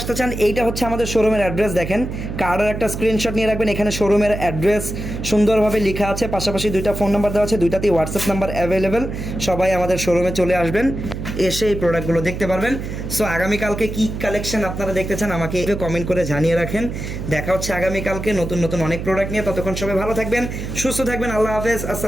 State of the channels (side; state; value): right; noise; hum, 6 dB below the sound